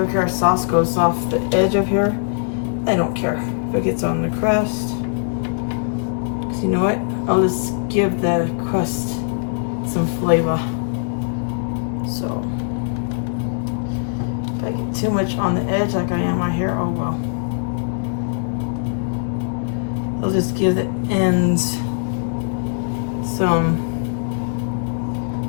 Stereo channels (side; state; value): right; silent; digital silence